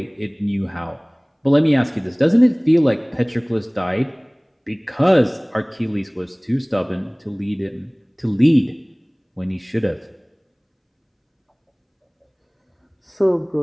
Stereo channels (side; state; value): both; identical; correlation 1.00